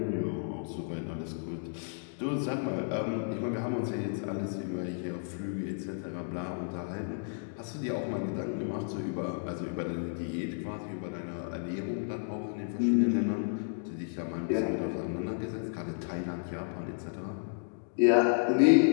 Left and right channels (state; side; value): silent; right; digital silence